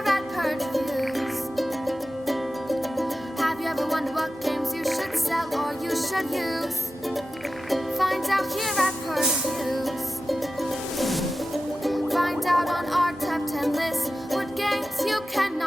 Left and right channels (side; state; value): both; normal; correlation 0.93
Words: at Purge Reviews. Have you ever wondered what games you should sell or you should use? Find out here at Purge Reviews. Find out on our top 10 list what games you